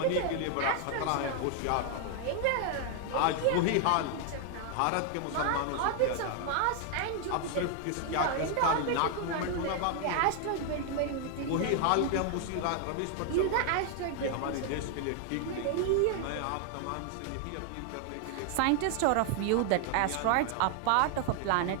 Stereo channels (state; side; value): different; both; correlation 0.00